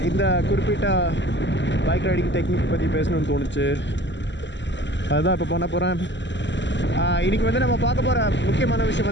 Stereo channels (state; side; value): late; right; 0.53 ms